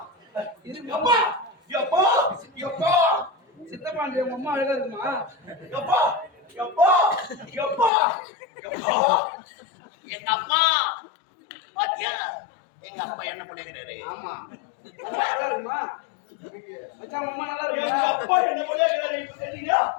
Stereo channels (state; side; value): drops out; right; at 7.9 s